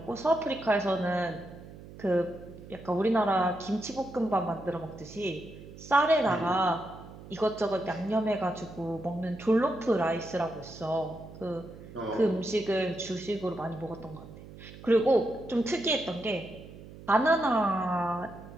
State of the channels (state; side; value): noise; right; hum, 16 dB below the sound